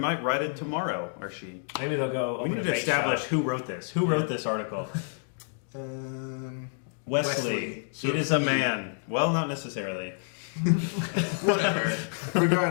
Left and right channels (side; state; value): right; silent; digital silence